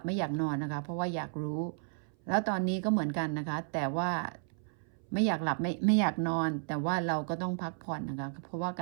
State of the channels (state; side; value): silent; left; 56 dB below the other